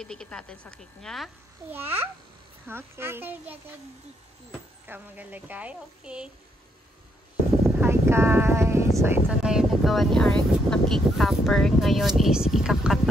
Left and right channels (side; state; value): both; normal; correlation 0.75